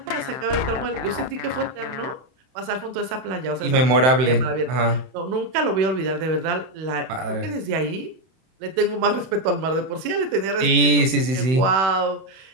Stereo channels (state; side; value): late; left; 31 ms